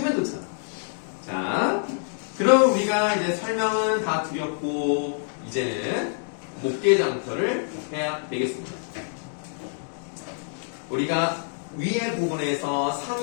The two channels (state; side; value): silent; right; 61 dB below the other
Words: 좋잖아. 자, 그럼 우리가 이제 설명은 다 드렸고 이제는 목계장터를 해야 되겠습니다. 우리가 위에 부분에서